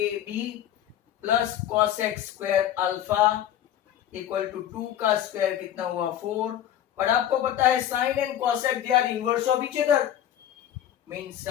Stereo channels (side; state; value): right; quieter; 11.2 dB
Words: plus cosec square alpha equal to 2 का स्क्वायर कितना हुआ 4। और आपको पता है sine and cosec they are inverse of each other, mean